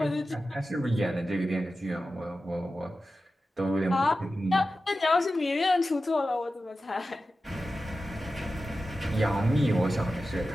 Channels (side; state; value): both; normal; correlation 0.93